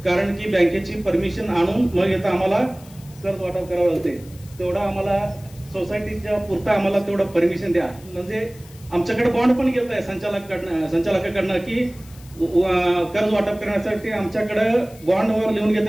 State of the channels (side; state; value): left; noise; hiss, 23 dB below the sound